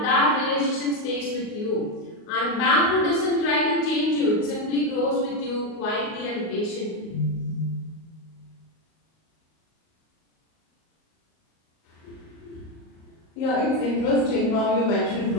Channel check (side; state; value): right; late; 38 ms